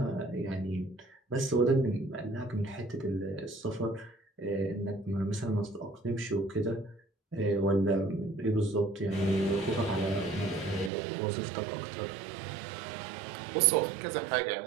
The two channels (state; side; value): drops out; left; at 10.9 s